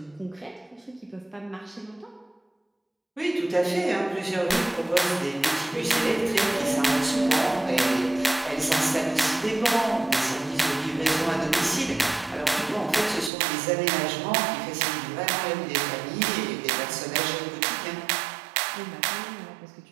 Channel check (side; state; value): left; drops out; at 13.3 s